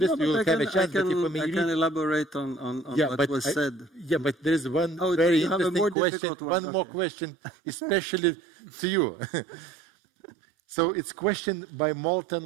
you will have a chance. I can elaborate on what was said. Yeah, but there is one very interesting question, one more question, especially to you. So it's question by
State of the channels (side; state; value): left; drops out; at 6.0 s